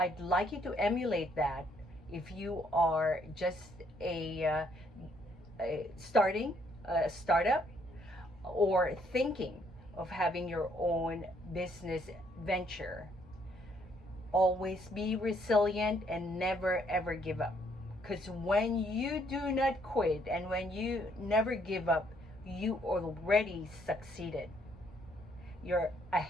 like you to emulate that if you are just starting a startup or thinking of having your own business venture. Always be resilient and never ever give up. Because when you do not quit and when you never give up, you already succeeded. You're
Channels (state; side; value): normal; both; correlation 0.68